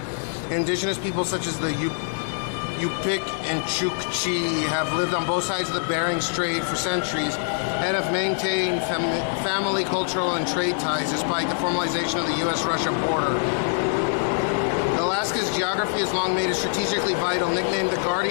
Indigenous people such as the Yupik and Chukchi have lived on both sides of the Bering Strait for centuries and have maintained family, cultural, and trade ties despite the formalization of the U.S.-Russia border. Alaska's geography has long made it strategically vital. Nicknamed the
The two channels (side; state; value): right; silent; 60 dB below the other